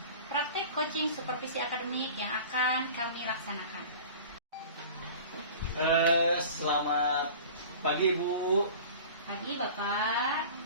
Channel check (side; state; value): both; inverted; correlation -0.40